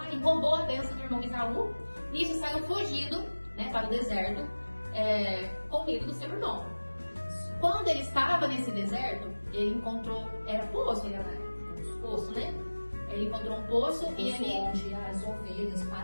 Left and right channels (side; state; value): both; inverted; correlation -1.00